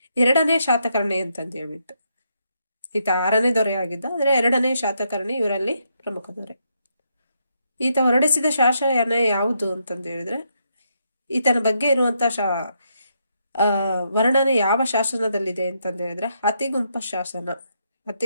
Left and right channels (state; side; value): inverted; both; correlation -0.78